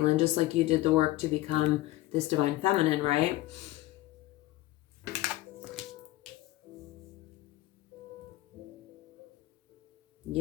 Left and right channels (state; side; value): quieter; right; 17.0 dB